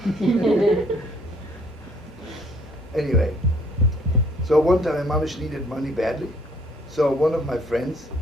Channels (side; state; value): both; normal; correlation 0.62